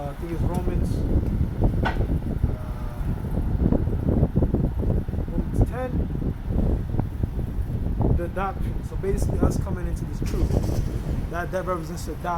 think it's Romans 10. The adoption. So basically us coming into this truth. That represents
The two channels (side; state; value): both; identical; correlation 1.00